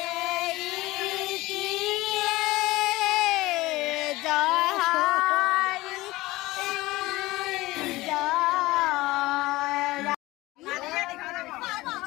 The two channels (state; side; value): quieter; right; 19.3 dB